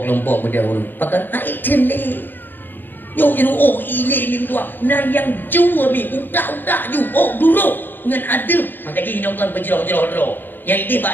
kelompok beda urang. Pakai item ni. Yo ini ni tua. Nah yang jua mi utak-utak ju. Dulu dengan adab. Maka dia hinaukan berjerah-jerah. Yang ini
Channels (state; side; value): late; right; 0.093 ms